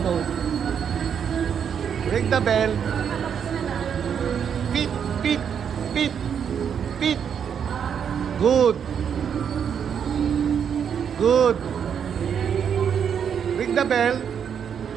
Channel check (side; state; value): left; quieter; 7.8 dB